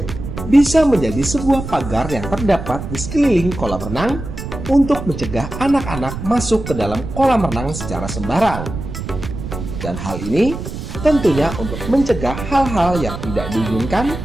bisa menjadi sebuah pagar yang terdapat di sekeliling kolam renang untuk mencegah anak-anak masuk ke dalam kolam renang secara sembarang. Dan hal ini tentunya untuk mencegah hal-hal yang tidak diinginkan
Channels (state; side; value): noise; right; rumble, 8 dB below the sound